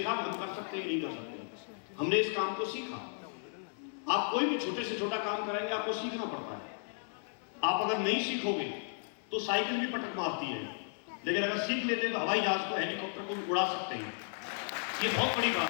हम कर सकते हैं कि नहीं कर सकते, हमने इस काम को सीखा। आप कोई भी छोटे से छोटा काम करेंगे आपको सीखना पड़ता है। आप अगर नहीं सीखोगे तो साइकिल भी पटक मारती है, लेकिन अगर सीख लेते हैं तो हवाई जहाज को, हेलीकॉप्टर को भी उड़ा सकते हैं। ये बहुत बड़ी बात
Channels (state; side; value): silent; right; 55 dB below the other